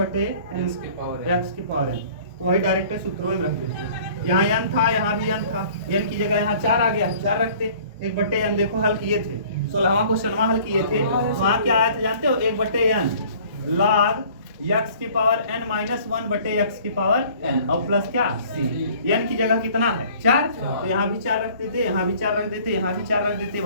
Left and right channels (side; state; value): both; inverted; correlation -0.51